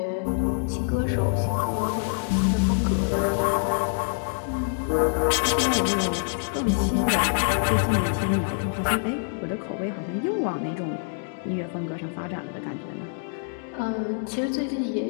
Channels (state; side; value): silent; right; digital silence